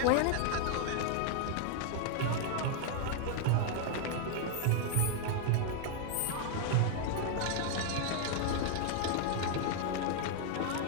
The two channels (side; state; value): both; different; correlation 0.00